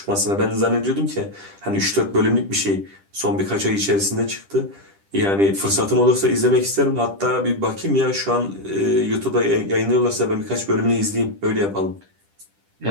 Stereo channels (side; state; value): left; late; 10 ms